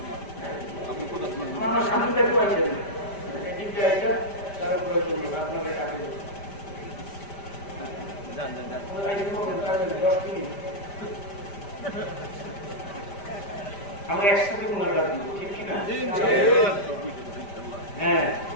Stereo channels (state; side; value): late; right; 5.1 ms